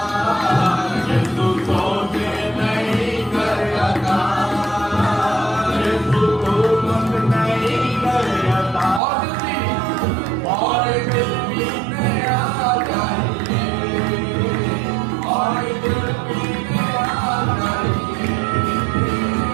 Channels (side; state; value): left; drops out; at 9.0 s